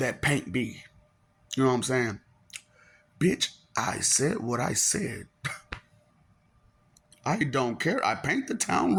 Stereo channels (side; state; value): both; identical; correlation 1.00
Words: paint be? You know what I'm saying? Bitch, I said what I said. I don't care. I paint the town